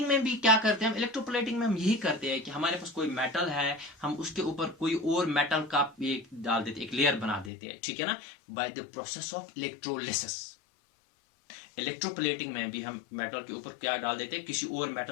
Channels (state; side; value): drops out; right; at 7.5 s